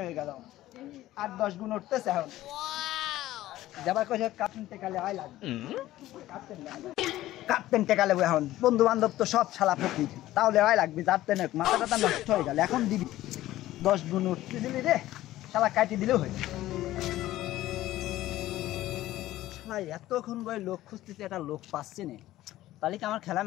হয়ে গেল, 8-10 গুণ উঠতেছে। এখন যাবার কইছে কাপ্তেন টেকালে আয় লাগবে, কাপ্তেন টেকা লেবো। এখন বন্ধু বান্ধব তো সব শালা ফকির, তাহলে আয় লাগবে। যাতে মাথা টাথা নষ্ট হয়ে গেল, এখন দিবি 10 গুণ উঠতে দিলি রে, শালা কাটি দিলেও হয়ে শালা। এতক্ষণ বই লোক খুঁজতেছে, একটা লোক পাচ্ছে না, তাহলে কি আমার খেলা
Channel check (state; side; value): quieter; right; 15.2 dB